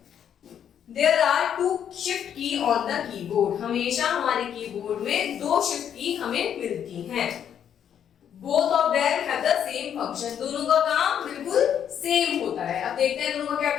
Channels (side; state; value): right; quieter; 9.0 dB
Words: There are 2 shift key on the keyboard। हमेशा हमारे कीबोर्ड में 2 shift की हमें मिलती हैं। Both of them have the same function। दोनों का काम बिल्कुल सेम होता है। अब देखते हैं दोनों का क्या